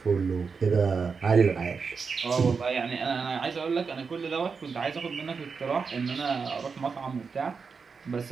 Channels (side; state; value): left; quieter; 5.3 dB